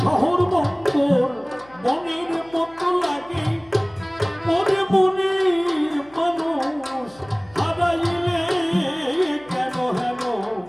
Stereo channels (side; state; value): left; noise; hum, 26 dB below the sound